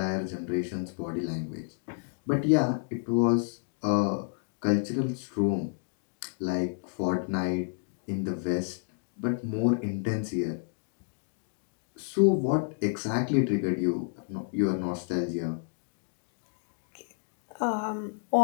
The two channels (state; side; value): silent; right; digital silence